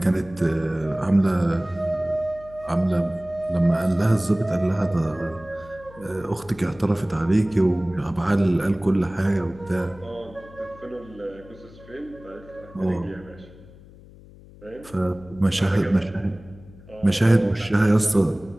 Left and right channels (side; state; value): left; noise; hum, 21 dB below the sound